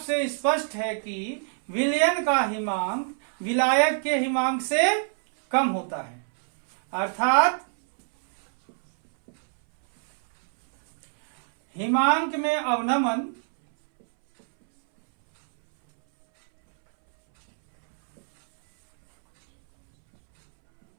से स्पष्ट है कि विलयन का हिमांक विलायक के हिमांक से कम होता है, अर्थात हिमांक में अवनमन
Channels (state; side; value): silent; left; 62 dB below the other